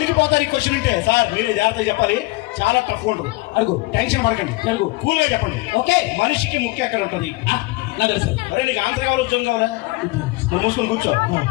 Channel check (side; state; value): right; quieter; 22.3 dB